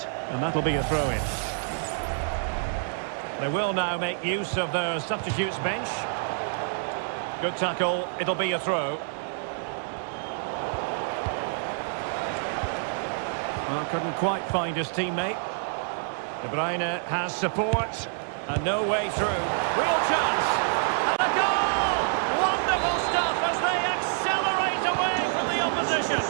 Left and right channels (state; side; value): silent; left; 60 dB below the other